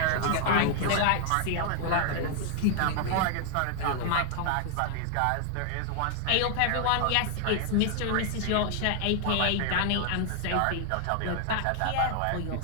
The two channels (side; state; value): both; different; correlation 0.00